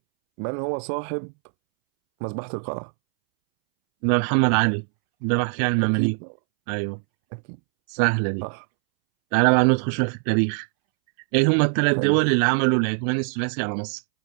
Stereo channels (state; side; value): silent; left; 64 dB below the other